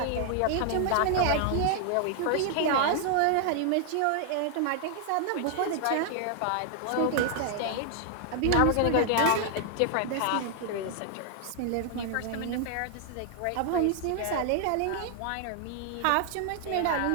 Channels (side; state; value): both; different; correlation 0.00